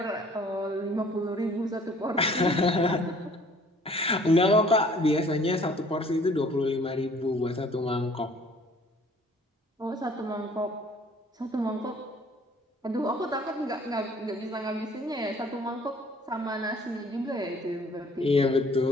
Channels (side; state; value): both; normal; correlation 0.55